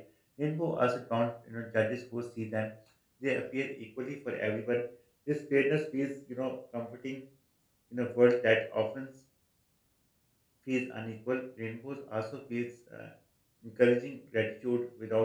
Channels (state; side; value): identical; both; correlation 1.00